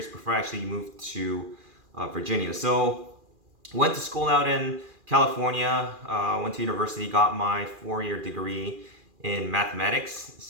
before I actually moved to Virginia. So went to school out in California, went to university, got my 4-year degree in mathematics.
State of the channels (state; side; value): late; left; 2.4 ms